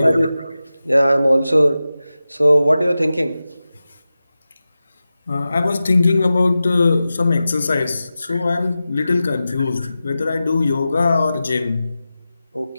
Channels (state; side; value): inverted; both; correlation -0.94